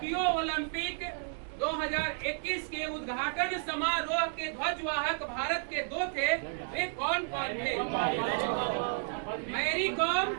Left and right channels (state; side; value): silent; left; 56 dB below the other